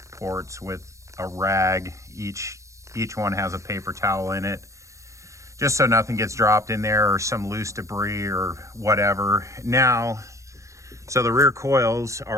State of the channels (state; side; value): late; left; 0.15 ms